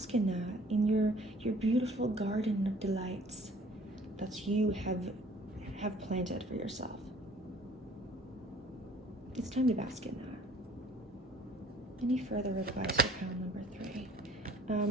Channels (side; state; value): both; normal; correlation 0.54